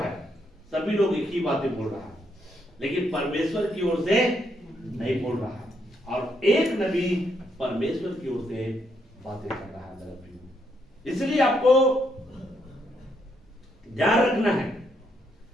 सभी लोग एक ही बातें बोल रहा है, लेकिन परमेश्वर की ओर से नहीं बोल रहा है। और एक नबी परमेश्वर की ओर से बातें कर रहा है। इसलिए आपको ध्यान रखना है।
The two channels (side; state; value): both; normal; correlation 0.76